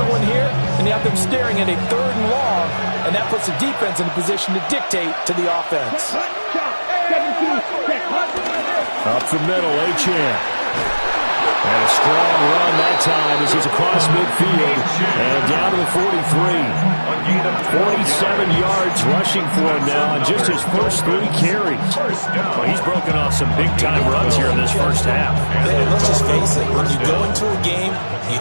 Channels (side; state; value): both; inverted; correlation -1.00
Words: one here, and you have them staring at a 3rd and long, and that puts the defense in a position to dictate to the offense. Up the middle, Achane. And a strong run that time as he's across midfield and down to the 43. 47 yards rushing for him now on just his first 3 carries. Well, he's broken off some big-time runs here in this first half. Man, let's just face it. When you go into a game,